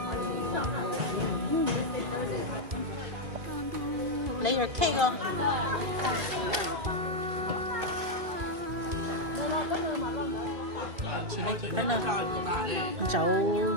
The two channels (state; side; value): late; left; 2.3 ms